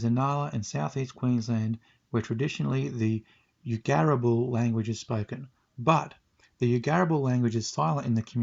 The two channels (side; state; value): both; identical; correlation 1.00